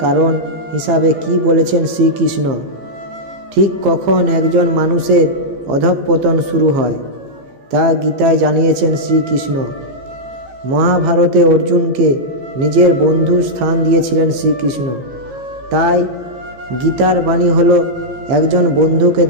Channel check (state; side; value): late; left; 15 ms